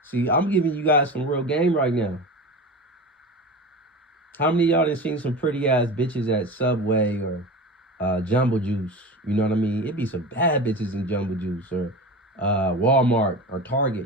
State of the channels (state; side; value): normal; both; correlation 0.29